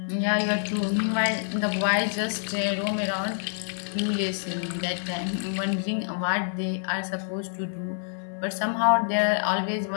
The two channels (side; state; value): right; silent; digital silence